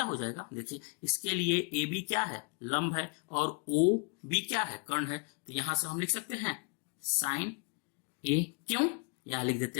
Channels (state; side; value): quieter; right; 34.9 dB